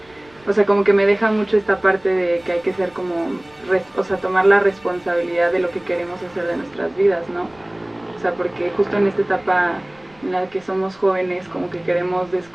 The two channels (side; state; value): right; noise; rumble, 29 dB below the sound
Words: o sea, como que me deja mucho esta parte de que hay que ser como, o sea, tomar la responsabilidad de lo que queremos hacer de nuestras vidas, ¿no? O sea, porque justo en esta etapa en la que somos jóvenes, como que queremos